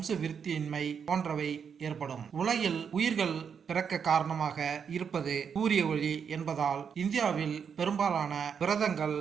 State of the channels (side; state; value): left; quieter; 6.9 dB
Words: விருத்தியின்மை போன்றவை ஏற்படும். உலகில் உயிர்கள் பிறக்க காரணமாக இருப்பது சூரிய ஒளி என்பதால் இந்தியாவில் பெரும்பாலான விரதங்கள்,